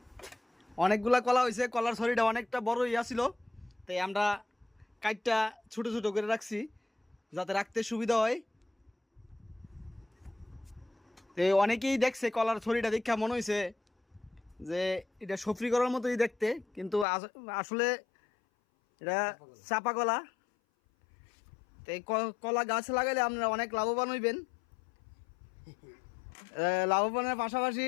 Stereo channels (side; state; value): right; drops out; at 17.1 s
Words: অনেকগুলা কলা হয়েছে। কলার ছড়িটা অনেকটা বড় ইয়া ছিল, তাই আমরা কাইটটা ছোট ছোট করে রাখছি যাতে রাখতে সুবিধা হয়। তো অনেকেই দেখছে কলার ছড়িটা দেখা মনে হয়েছে যে এটা সফরি করার মতোই দেখতে, কিন্তু আসলে এটা চাপা কলা। তো এই কলা গাছ লাগাইলে আপনারা অনেক লাভবান হইবেন। লাভবানের পাশাপাশি